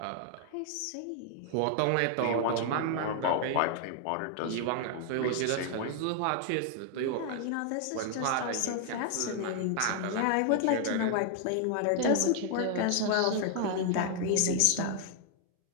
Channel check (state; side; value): different; both; correlation 0.00